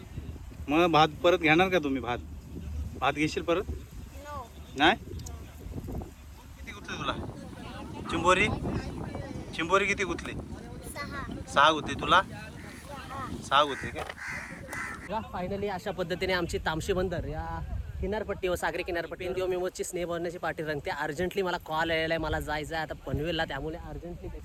मग भात परत घेणार का तुम्ही? भात घेशील परत? नो. नाही? किती गुतले तुला चिंबोरी किती गुतले? 6 गुतले. तुला 6 गुतले काय? फायनली अशा पद्धतीने आमची तामशी बंदर या किनारपट्टी व सागरी किनारपट्टी दिवस स्नेह भरण्याची पार्टी रंगते. अर्जंटली मला कॉल आलेला आहे, मला जायचं आहे आता पनवेलला, त्यामुळे अर्जंटली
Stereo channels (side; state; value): both; identical; correlation 1.00